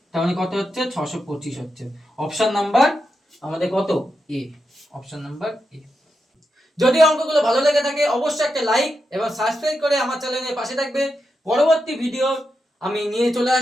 তার মানে কত হচ্ছে 625 হচ্ছে। অপশন নাম্বার আমাদের কত, এ, অপশন নাম্বার এ। যদি অঙ্কগুলো ভালো লেগে থাকে অবশ্যই একটা লাইক এবং সাবস্ক্রাইব করে আমার চ্যানেলের পাশে থাকবে। পরবর্তী ভিডিও আমি নিয়ে চলে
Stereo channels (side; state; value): both; normal; correlation 0.87